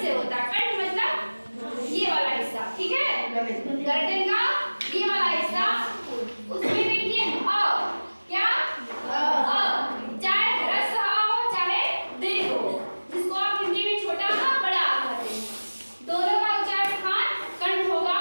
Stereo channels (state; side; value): inverted; both; correlation -1.00